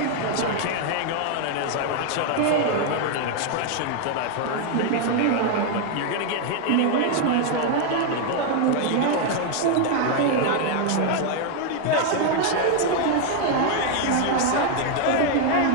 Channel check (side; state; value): both; different; correlation 0.00